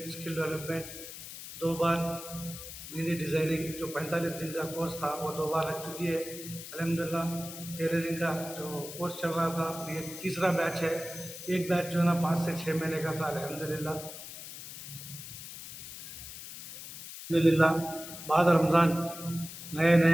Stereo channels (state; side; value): noise; left; hiss, 11 dB below the sound